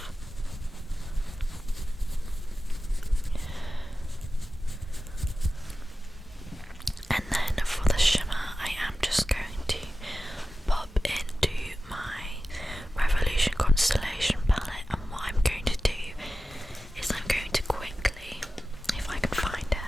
And then for the shimmer, I am just going to pop into my Revolution Constellation palette, and what I'm going to do is I'm going to quickly, if I can find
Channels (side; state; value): both; normal; correlation 0.95